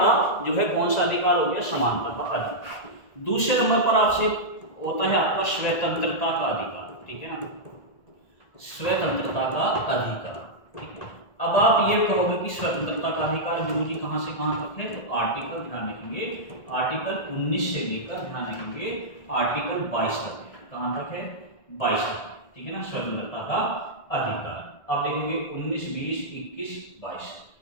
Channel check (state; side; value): late; right; 1.7 ms